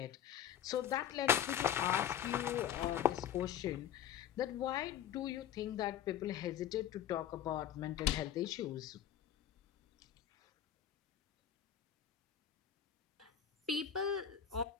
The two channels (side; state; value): right; quieter; 9.9 dB